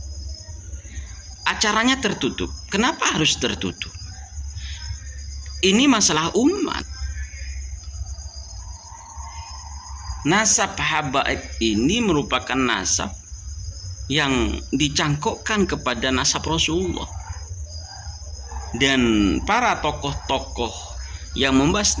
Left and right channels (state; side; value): identical; both; correlation 1.00